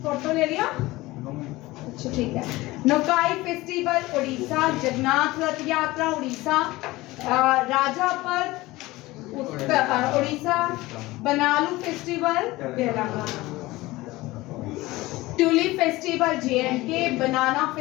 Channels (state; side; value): quieter; right; 19.5 dB